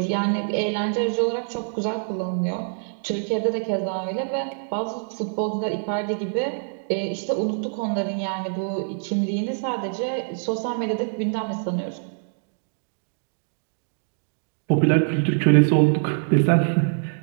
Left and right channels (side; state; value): left; silent; digital silence